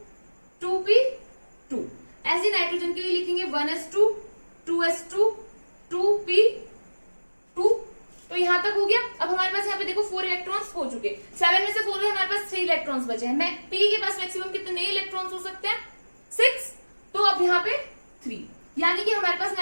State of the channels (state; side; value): inverted; both; correlation -1.00